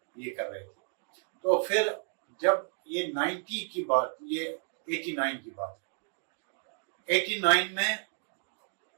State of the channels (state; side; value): silent; left; 56 dB below the other